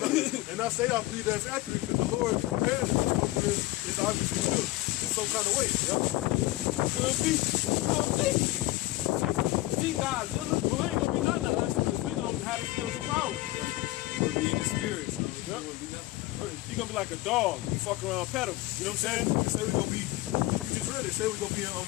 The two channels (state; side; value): quieter; right; 18.2 dB